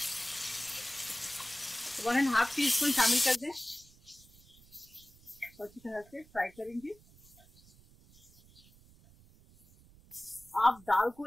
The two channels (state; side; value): noise; right; rumble, 26 dB below the sound